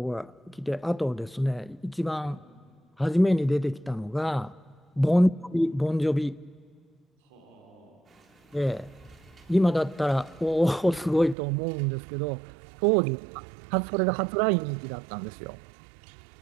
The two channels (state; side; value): drops out; left; at 11.4 s